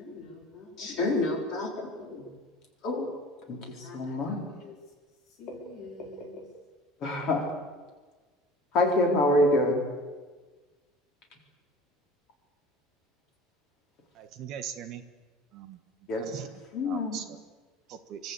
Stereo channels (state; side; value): normal; both; correlation 0.42